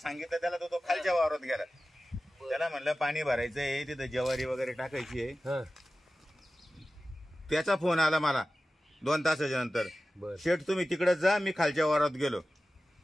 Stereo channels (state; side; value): normal; both; correlation 0.95